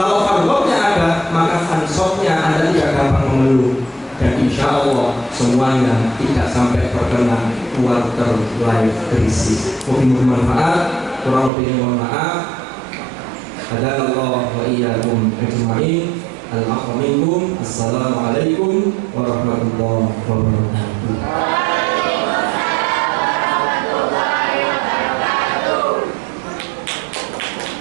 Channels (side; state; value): left; drops out; at 11.5 s